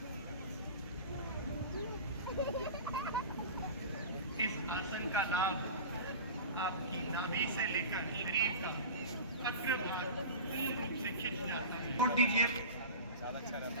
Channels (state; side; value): inverted; both; correlation -0.33